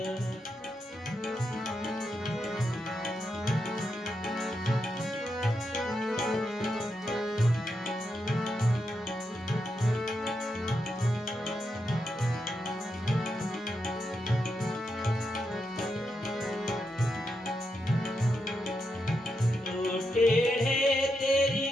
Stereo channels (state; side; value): normal; both; correlation 0.84